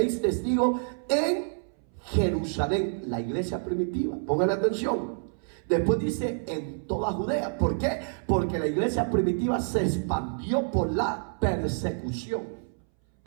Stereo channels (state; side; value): silent; left; 59 dB below the other